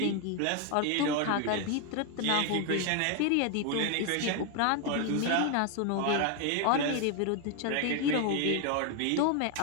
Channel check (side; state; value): both; different; correlation 0.01